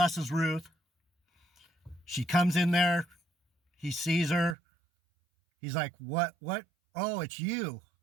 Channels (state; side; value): drops out; left; at 4.5 s